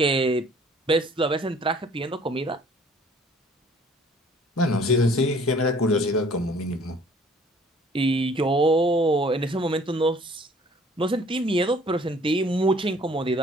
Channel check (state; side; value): normal; both; correlation 0.55